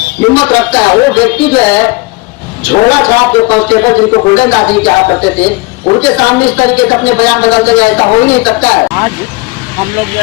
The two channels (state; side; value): quieter; right; 24.7 dB